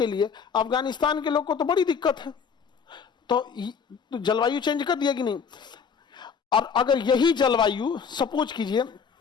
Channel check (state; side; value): quieter; right; 6.3 dB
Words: लिए अफगानिस्तान के लोग को तो बड़ी दिक्कत है। तो जलवायु चेंज कर दिया कि नहीं? और अगर यही जलवायु सपोज कीजिए